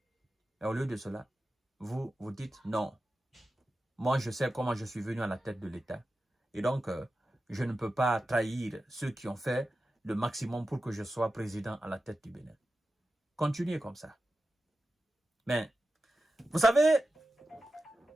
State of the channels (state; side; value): normal; both; correlation 0.92